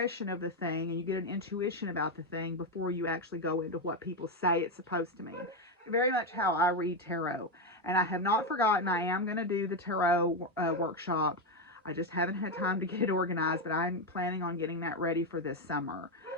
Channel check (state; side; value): normal; both; correlation 0.08